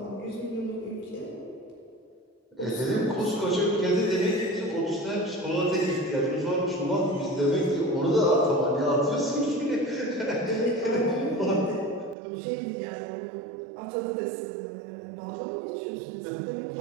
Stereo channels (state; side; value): drops out; left; at 12.2 s